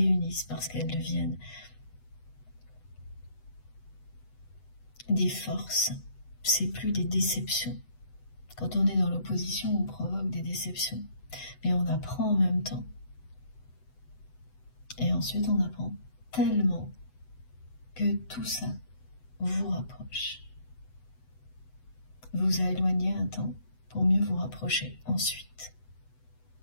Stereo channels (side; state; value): right; late; 8.0 ms